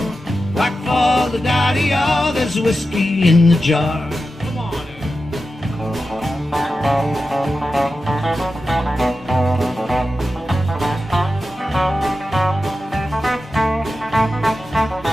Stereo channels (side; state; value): both; normal; correlation 0.92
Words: whack for the daddy-o. There's whiskey in the jar.